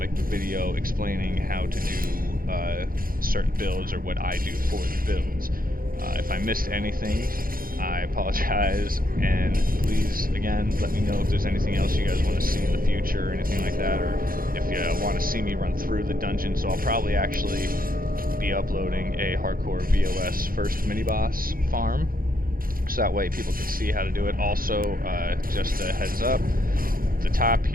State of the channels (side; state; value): left; late; 0.42 ms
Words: the video explaining how to do certain builds or what I do for the builds. If I missed anything, I apologize, and please, again, let me know if there's anything else you guys want to see in the future or anything like that, or if you want to see me run through the dungeon. So I'll probably actually be uploading a hardcore VOS first mini-boss farm, so that way people can see how to do it. Also, just a heads up, the top